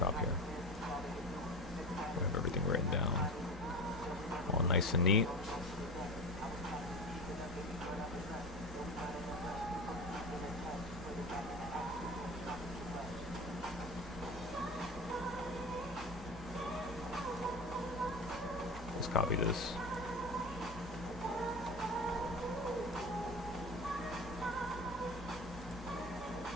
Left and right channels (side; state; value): both; normal; correlation 0.31